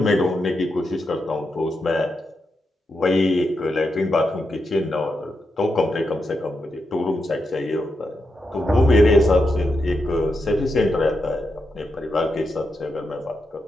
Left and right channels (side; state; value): both; normal; correlation 0.85